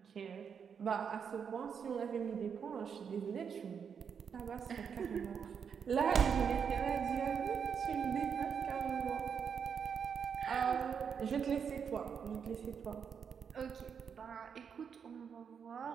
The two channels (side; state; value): left; quieter; 6.9 dB